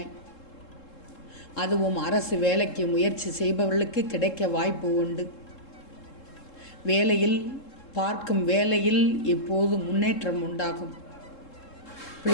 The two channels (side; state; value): right; late; 3.7 ms